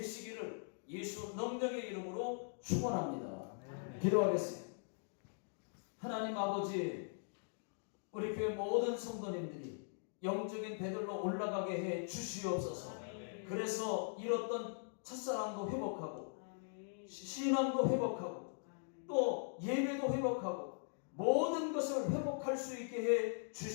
예수 능력의 이름으로 축원합니다. 기도하겠습니다. 하나님 아버지, 우리 교회 모든 성도님들이 영적인 베델로 올라가게 해 주시옵소서. 그래서 잃었던 첫사랑도 회복하고 신앙도 회복하고 또 예배도 회복하고 모든 것을 회복할 수 있게 해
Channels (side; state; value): right; silent; digital silence